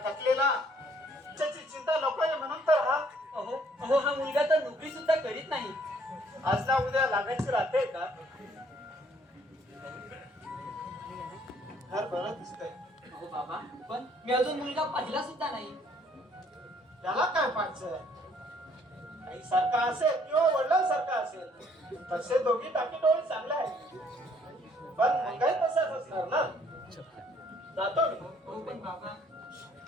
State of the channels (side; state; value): both; normal; correlation 0.63